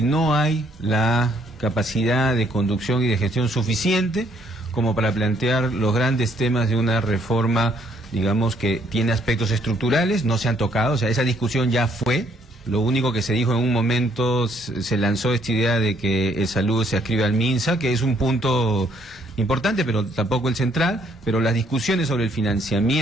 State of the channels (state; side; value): normal; both; correlation 0.67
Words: no hay la capacidad de conducción y de gestión suficiente como para plantear los grandes temas de una reforma, digamos, que tiene aspectos estructurales, no se han tocado. O sea, esa discusión ya fue. Lo único que se dijo en un momento, se lanzó esta idea de que salud se adscribe al MINSA, que es un punto importante, pero tampoco el central. Pero las discusiones sobre el